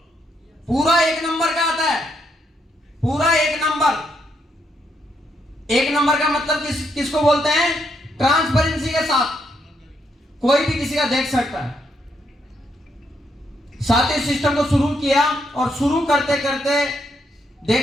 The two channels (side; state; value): both; normal; correlation 0.76